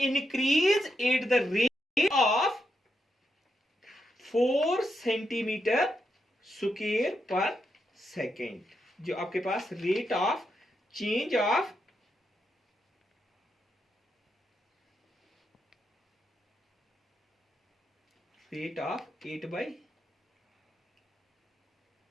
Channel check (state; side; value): normal; both; correlation 0.83